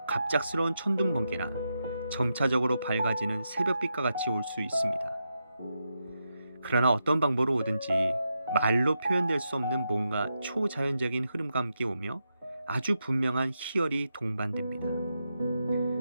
갑작스러운 천둥번개나 점차적으로 밝아지는 새벽빛과 같이 올 수 있습니다. 그러나 어떤 방법으로 오든지 말로 표현될 수 없는 뭔가 초자연적인 흐름과 함께 오며 아주 분명한 희열이 동반됩니다.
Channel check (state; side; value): inverted; both; correlation -0.86